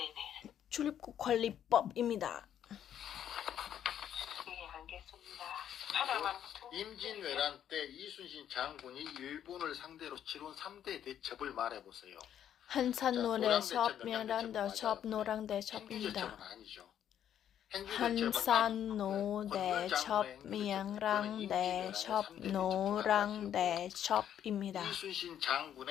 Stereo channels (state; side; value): quieter; right; 10.0 dB